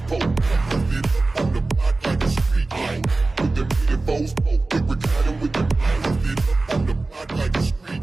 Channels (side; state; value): left; quieter; 3.3 dB